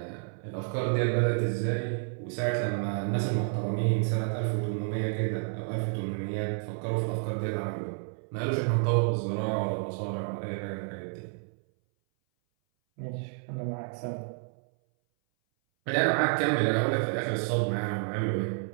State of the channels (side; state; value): left; silent; 58 dB below the other